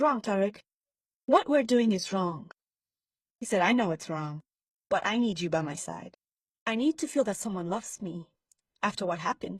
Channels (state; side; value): identical; both; correlation 1.00